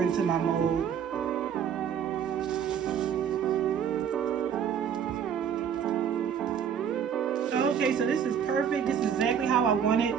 into my mold. Okay, so this is perfect. This is exactly how I want it.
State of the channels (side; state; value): left; quieter; 8.1 dB